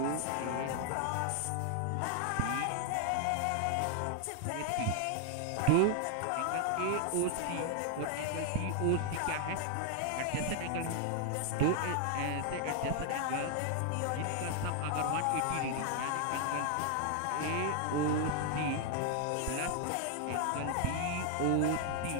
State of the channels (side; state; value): both; different; correlation 0.00